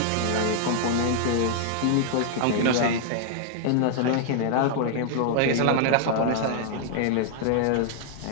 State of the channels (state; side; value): different; both; correlation 0.00